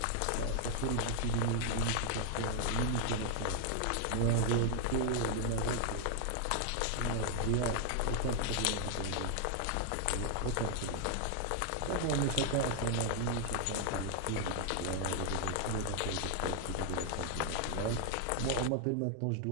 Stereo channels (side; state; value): both; different; correlation 0.00